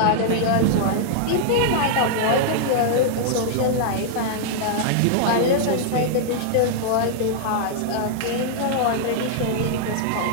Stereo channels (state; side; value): different; both; correlation -0.01